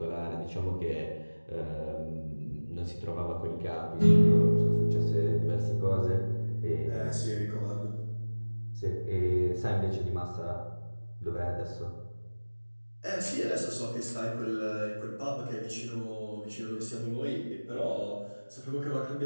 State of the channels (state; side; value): inverted; both; correlation -1.00